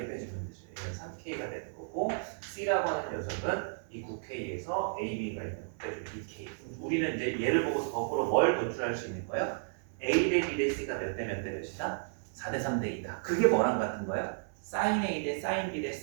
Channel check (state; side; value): silent; left; 56 dB below the other